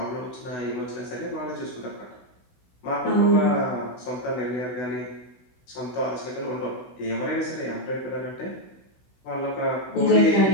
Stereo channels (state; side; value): late; right; 16 ms